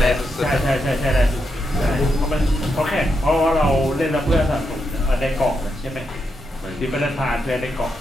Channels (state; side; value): normal; both; correlation 0.83